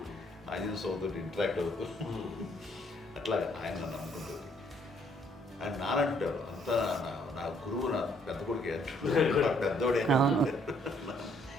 ఆంజనేయ స్వామితో ఇంటరాక్ట్ అవుతూ అట్లా ఆయన నన్ను నమ్ముకుంటుంది. ఆయన నానంటారు అంతా నా గురువు, నా పెద్ద కొడుకు పెద్దోడే.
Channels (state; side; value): normal; both; correlation 0.67